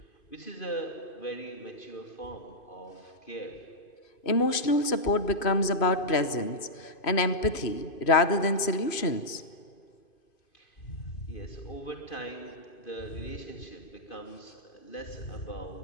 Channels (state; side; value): late; right; 2.5 ms